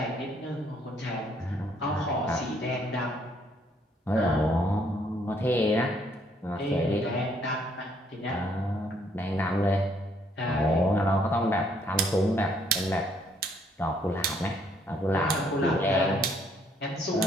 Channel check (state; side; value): normal; both; correlation 0.67